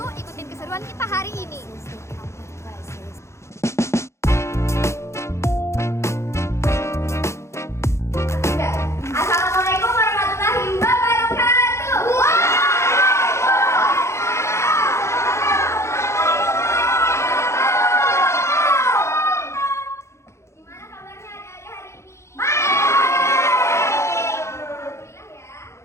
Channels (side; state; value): right; late; 0.13 ms